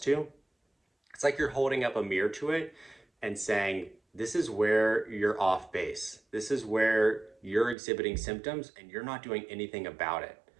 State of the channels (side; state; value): left; drops out; at 7.8 s